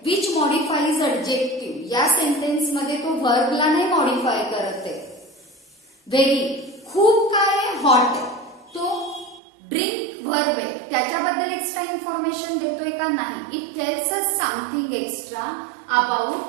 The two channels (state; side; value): drops out; left; at 9.4 s